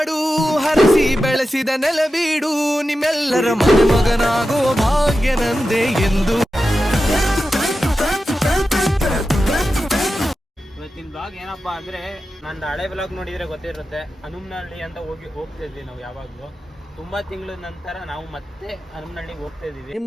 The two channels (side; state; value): both; normal; correlation 0.92